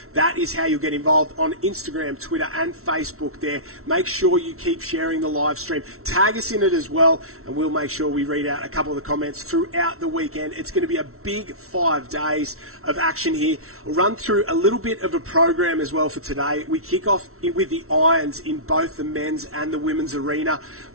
That is how you'll get involved on Instagram, Twitter and Facebook there. Make sure you keep sharing the live stream. Tag us in it as well, and we'll make sure we read out a couple of the comments throughout the weekend. It's going to be a big 5 days of action here. We'll run through a little bit of a program as well for today. We kick off with the irons in both the men's and the women's arena.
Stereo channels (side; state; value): left; late; 0.63 ms